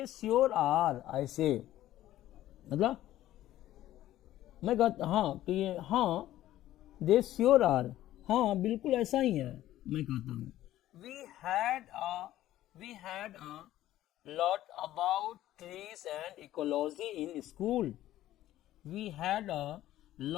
श्योर आर, ऐसे मतलब मैं कहता हाँ कि ये हाँ, दे श्योर आर, हाँ बिल्कुल ऐसा ही है, मैं कहता हूँ। We had a lot about trees and ecology in school. We had a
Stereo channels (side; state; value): right; quieter; 14.0 dB